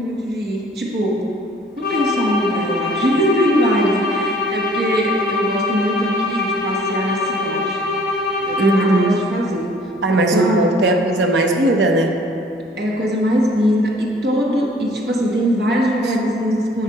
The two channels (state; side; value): normal; both; correlation 0.55